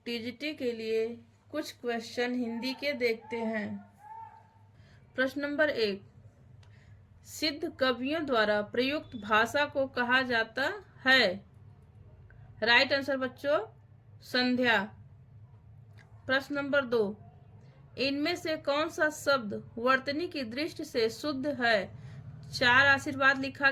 टीजीटी के लिए कुछ क्वेश्चन हिंदी के देखते हैं। प्रश्न नंबर 1, सिद्ध कवियों द्वारा प्रयुक्त भाषा को कहा जाता है। राइट आंसर बच्चों संध्या। प्रश्न नंबर 2, इनमें से कौन सा शब्द वर्तनी की दृष्टि से शुद्ध है। 4 आशीर्वाद लिखा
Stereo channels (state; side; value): identical; both; correlation 1.00